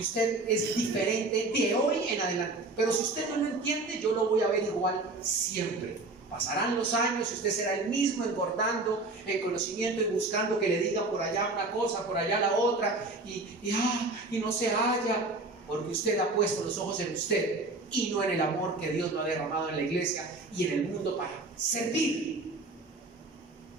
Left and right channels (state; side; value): quieter; left; 3.2 dB